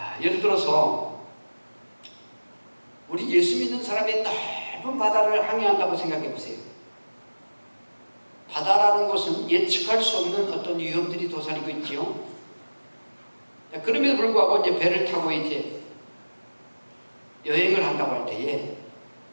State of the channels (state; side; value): inverted; both; correlation -1.00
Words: 예를 들어서 우리 예수 믿는 사람이 넓은 바다를 항해한다고 생각해 보세요. 바다라는 것은 예측할 수 없는 어떤 위험들이 도사리고 있지요. 그럼에도 불구하고 이제 배를 타고 이제 여행을 한다고 할 때에